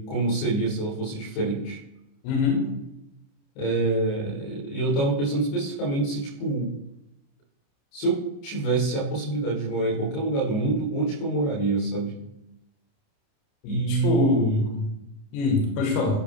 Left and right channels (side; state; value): right; late; 29 ms